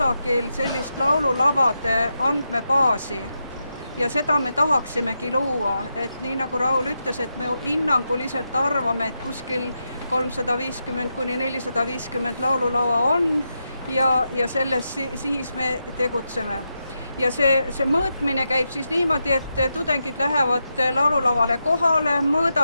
sellist laululavade andmebaasi. Ja seda me tahaksimegi luua, et nii nagu Raul ütles, et me hinnanguliselt arvame, et kuskil 350–450 laululava on ja selles siis me tegutseme. Ja see mõõtmine käib siis niimoodi, et tudengid lähevad laululavale kohale,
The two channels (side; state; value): both; inverted; correlation -0.86